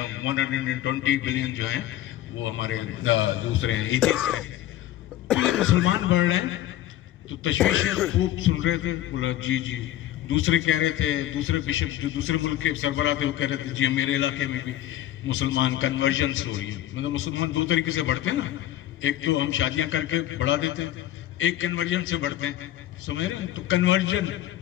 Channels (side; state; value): right; quieter; 13.4 dB